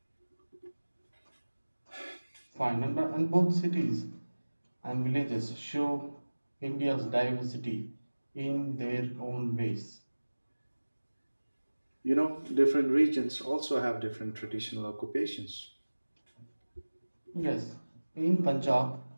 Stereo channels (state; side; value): inverted; both; correlation -1.00